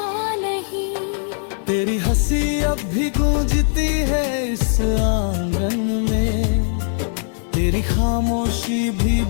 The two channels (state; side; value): silent; right; digital silence